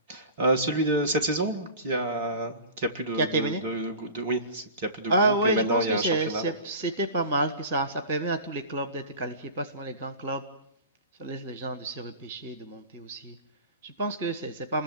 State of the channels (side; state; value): both; inverted; correlation -0.36